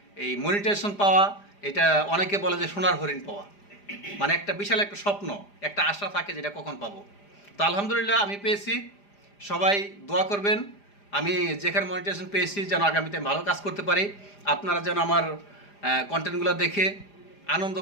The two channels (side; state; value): right; late; 4.9 ms